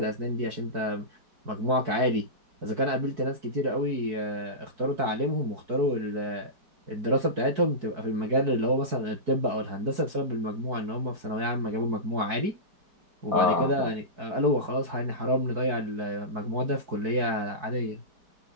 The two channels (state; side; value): late; left; 4.6 ms